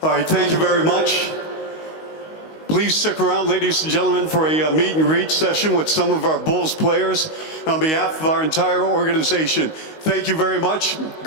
All right, thank you very much. Please stick around, ladies and gentlemen, for a meet and greet session with some of our Bulls players. On behalf of our entire organization, thank you very much.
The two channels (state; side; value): late; right; 19 ms